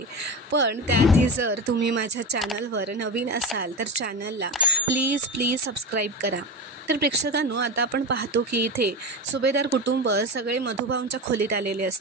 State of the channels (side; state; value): both; normal; correlation 0.21